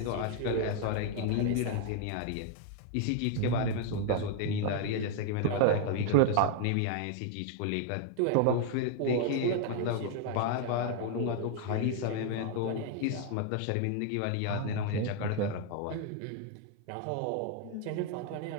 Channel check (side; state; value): both; different; correlation 0.00